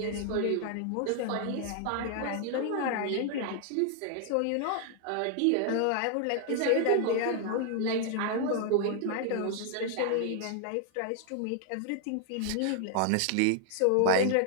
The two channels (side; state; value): both; different; correlation 0.00